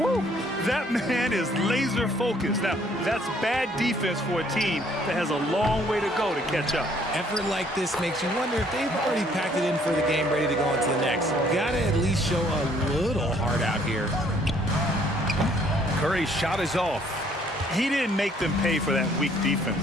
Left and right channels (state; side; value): normal; both; correlation 0.63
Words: That man is laser focused. Now, that's bad defense for a team that has a long way to go to catch up. Effort like this makes you wonder if they've already packed it in for the game, ready to go on to the next. Gotta at least show a little heart out here. Curry's shot is off. He didn't make them pay for that weak